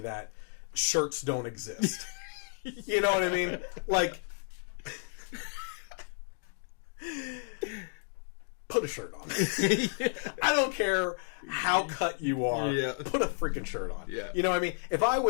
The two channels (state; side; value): silent; right; digital silence